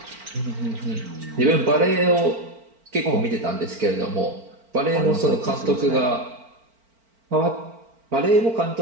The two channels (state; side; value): late; left; 4.4 ms